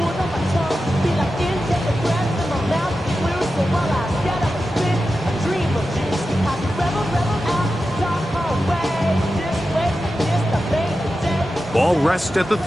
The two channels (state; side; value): normal; both; correlation 0.91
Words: Ball rests at the